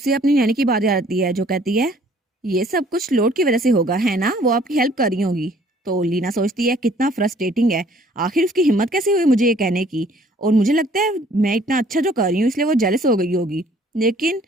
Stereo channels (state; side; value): normal; both; correlation 0.58